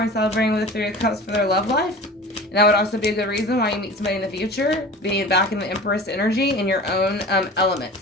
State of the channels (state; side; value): normal; both; correlation 0.38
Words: celebrating with the Three of Cups for their love life? And that would also be a good reason why you meet somebody in the future, being back in the Empress energy in your own element.